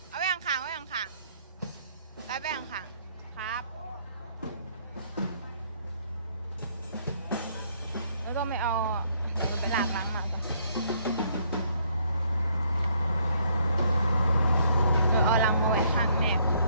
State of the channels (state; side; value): inverted; both; correlation -0.67